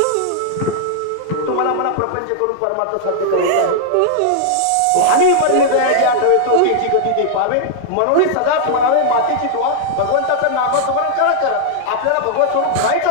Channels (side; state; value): both; different; correlation -0.01